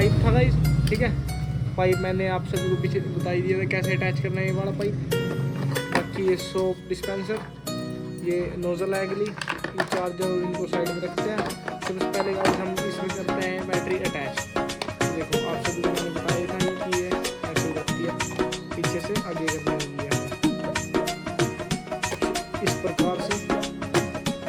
था गाइस, ठीक है। पाइप मैंने आप सभी को पीछे बता ही दिया था कैसे अटैच करना है ये वाला पाइप। बाकी ये सोप डिस्पेंसर, ये नोजल है अगली, ये चार्जर, इनको साइड में रखते हैं। सबसे पहले गाइस हम इसमें करते हैं बैटरी अटैच। देखो आप सभी को मैंने बताया था कि ये ऐसे रखती है, पीछे से आगे करनी होगी है इस प्रकार से,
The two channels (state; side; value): identical; both; correlation 1.00